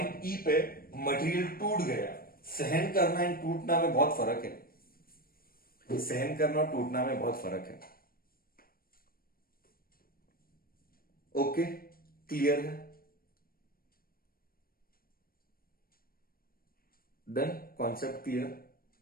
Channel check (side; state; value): right; late; 0.43 ms